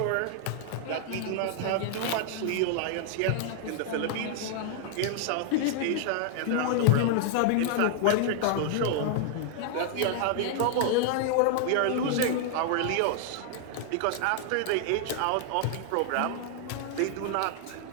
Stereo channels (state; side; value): different; both; correlation 0.00